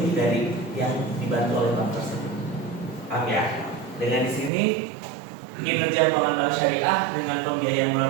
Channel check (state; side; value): drops out; left; at 4.5 s